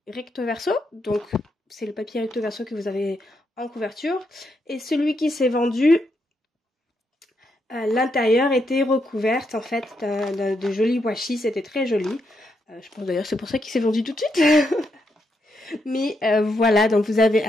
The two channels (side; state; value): both; normal; correlation 0.80